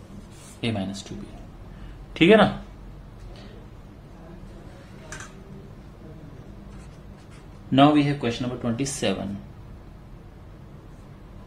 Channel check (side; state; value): both; identical; correlation 1.00